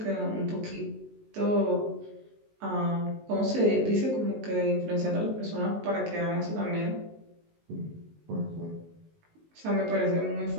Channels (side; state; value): left; late; 19 ms